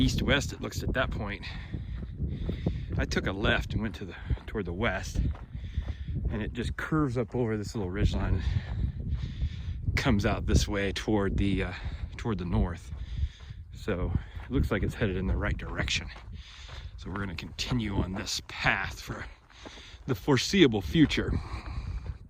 it looks at that point. I took a left and went toward the west, and it just curves up over this little ridgeline and comes out this way toward the north. So it looks like it's headed in the right direction. So we're going to continue on this path for the foreseeable future.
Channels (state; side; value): identical; both; correlation 1.00